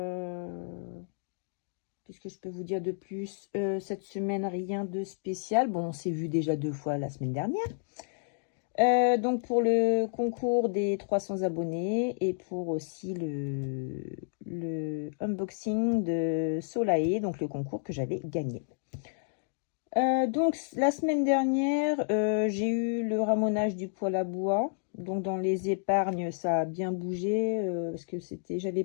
Qu'est-ce que je peux vous dire de plus? Cette semaine, rien de spécial. Bon, on s'est vu déjà 2 fois la semaine dernière. Donc pour le concours des 300 abonnés et pour aussi le unboxing de Solae, donc le concours que j'avais gagné. Donc la semaine dernière, j'ai eu le ramonage du poêle à bois. Donc dans les épargnes, ça a bien bougé parce que j'avais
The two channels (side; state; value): right; silent; digital silence